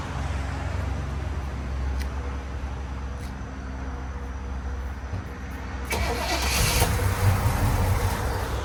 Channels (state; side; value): identical; both; correlation 1.00